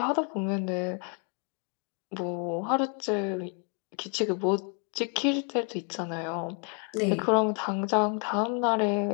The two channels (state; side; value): quieter; right; 38.1 dB